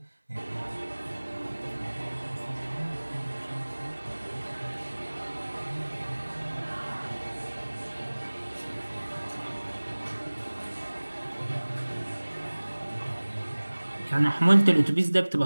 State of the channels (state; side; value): inverted; both; correlation -1.00